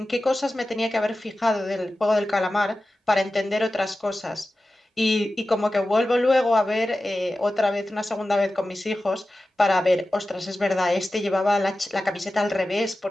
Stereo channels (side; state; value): both; normal; correlation 0.94